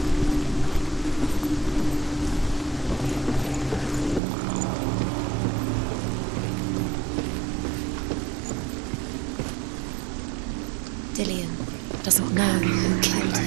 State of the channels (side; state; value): left; drops out; at 4.2 s